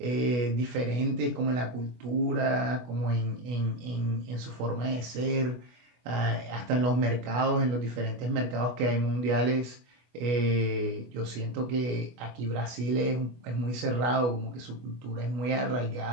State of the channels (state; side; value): late; left; 24 ms